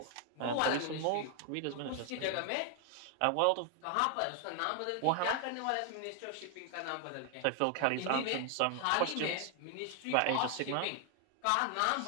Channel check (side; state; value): both; different; correlation 0.00